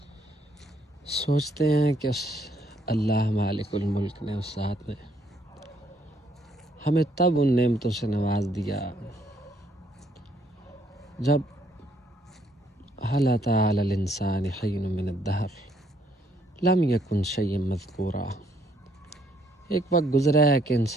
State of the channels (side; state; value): both; normal; correlation 0.68